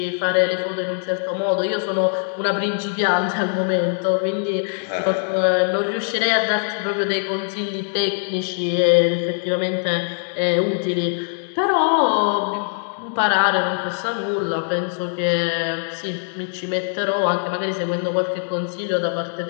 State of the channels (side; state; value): right; silent; digital silence